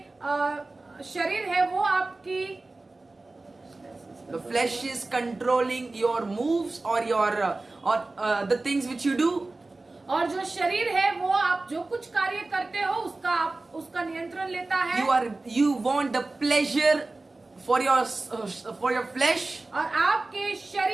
The flesh is controlling your moves or the things which you do. और जो शरीर है वो आप जो कुछ कार्य करते हो उसका नियंत्रण लेता है। You want the pleasure for your flesh. और आपके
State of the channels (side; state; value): left; quieter; 3.2 dB